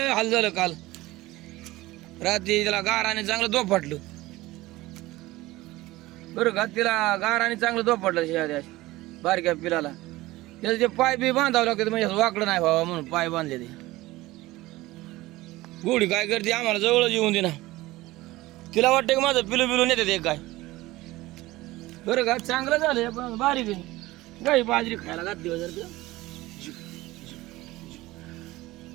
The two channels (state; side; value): quieter; left; 18.7 dB